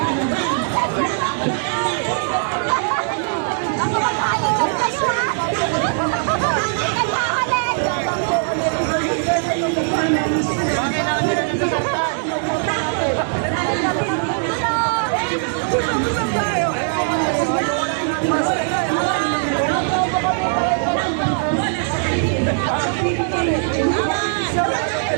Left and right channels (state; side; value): silent; left; 66 dB below the other